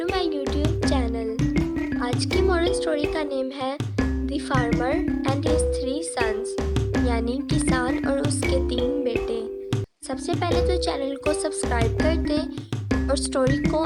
my YouTube channel. आज की moral story का name है the farmer and his 3 sons, यानी किसान और उसके 3 बेटे। सबसे पहले तो चैनल को सब्सक्राइब कर दें और स्टोरी को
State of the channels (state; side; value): identical; both; correlation 1.00